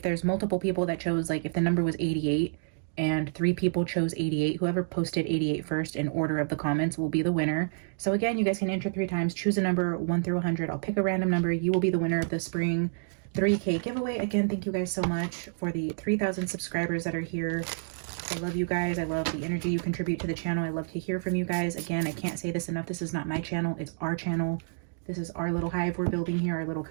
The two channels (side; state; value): left; silent; digital silence